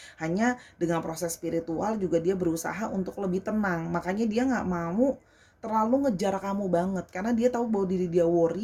Hanya dengan proses spiritual juga dia berusaha untuk lebih tenang. Makanya dia nggak mau terlalu ngejar kamu banget, karena dia tahu bahwa diri dia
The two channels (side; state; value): both; identical; correlation 1.00